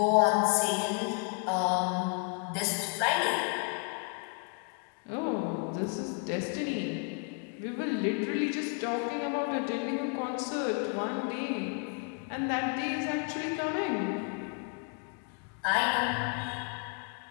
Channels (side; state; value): right; quieter; 37.1 dB